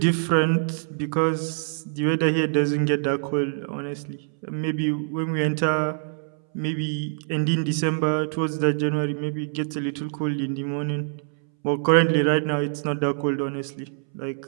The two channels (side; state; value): left; silent; 62 dB below the other